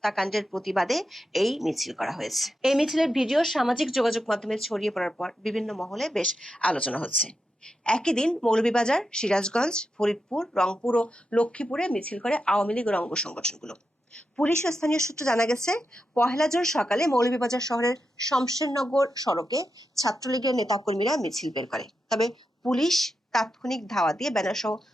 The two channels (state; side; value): normal; both; correlation 0.87